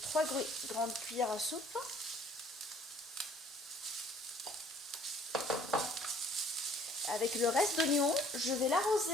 3 grandes cuillères à soupe. Avec le reste d'oignon, je vais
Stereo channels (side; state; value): both; normal; correlation 0.56